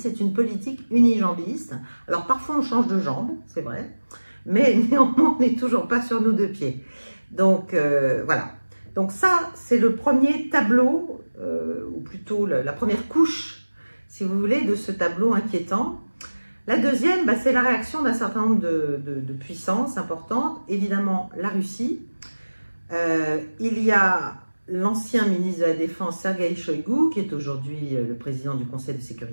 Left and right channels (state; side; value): inverted; both; correlation -1.00